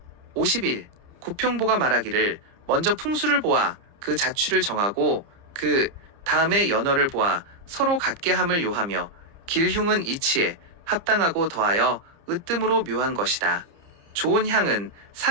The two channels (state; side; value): late; left; 30 ms